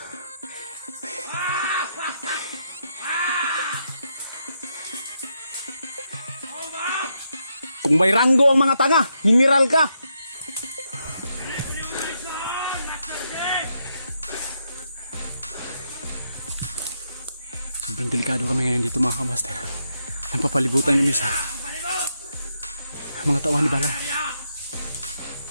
Kung may ranggo ang mga tanga, mineral ka! Sobrang delikado kami ngayon dito, mga kamaster. Napapalibutan kami sa mga tawan ni Balaw.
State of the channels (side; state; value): both; inverted; correlation -0.80